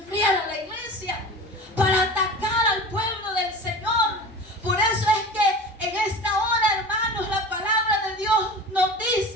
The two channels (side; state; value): both; normal; correlation 0.35